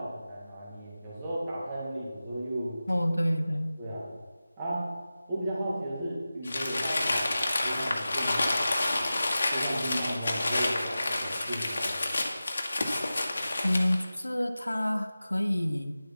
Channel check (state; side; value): inverted; both; correlation -0.95